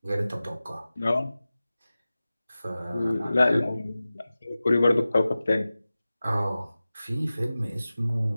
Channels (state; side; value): inverted; both; correlation -0.96